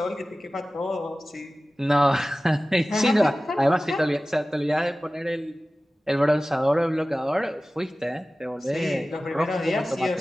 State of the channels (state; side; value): normal; both; correlation 0.97